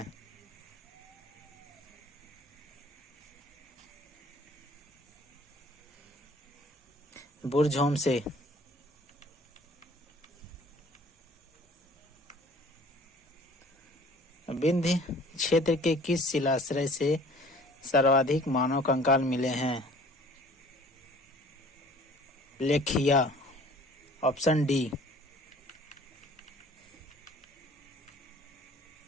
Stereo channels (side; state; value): both; normal; correlation 0.51